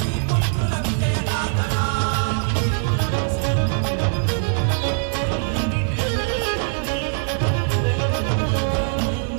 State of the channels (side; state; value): left; silent; digital silence